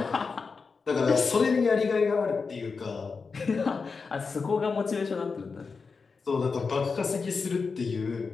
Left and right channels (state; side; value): quieter; right; 4.8 dB